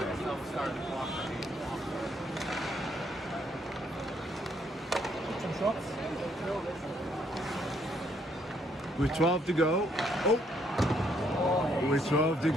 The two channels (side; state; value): both; normal; correlation 0.70